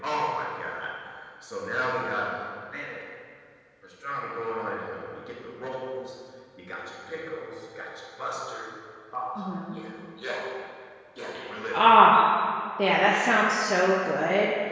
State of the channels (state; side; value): identical; both; correlation 1.00